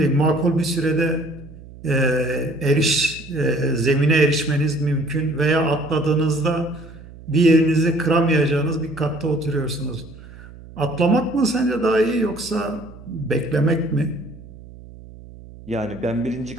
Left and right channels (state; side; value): noise; right; hum, 18 dB below the sound